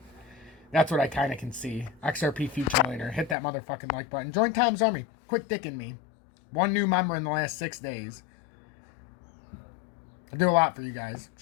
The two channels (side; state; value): right; drops out; at 3.4 s